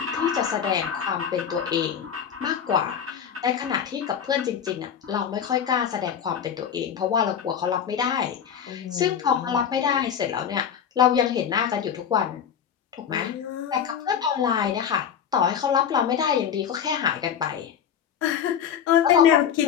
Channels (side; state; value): right; quieter; 8.2 dB